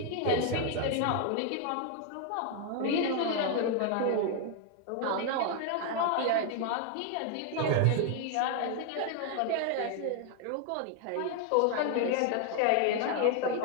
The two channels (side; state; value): both; different; correlation 0.00